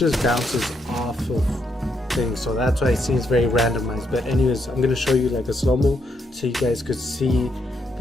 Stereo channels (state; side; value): normal; both; correlation 0.78